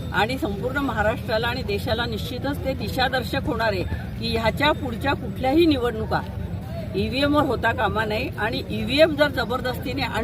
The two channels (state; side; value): identical; both; correlation 1.00